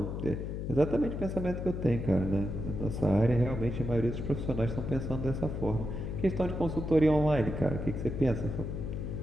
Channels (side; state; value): left; noise; hum, 4 dB below the sound